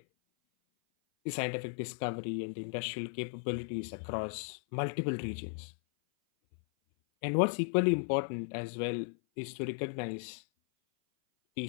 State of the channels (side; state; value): right; silent; 54 dB below the other